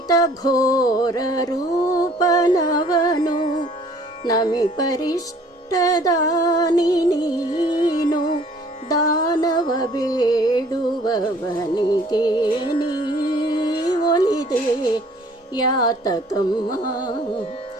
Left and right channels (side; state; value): both; normal; correlation 0.56